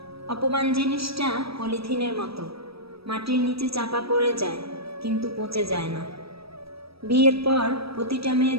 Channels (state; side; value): late; left; 0.77 ms